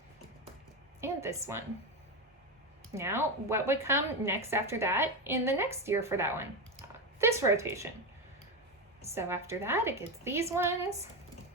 and this one. Now, what would come next after that in the next year for that one? This rotation. So after that, it gets these ones.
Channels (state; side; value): normal; both; correlation 0.14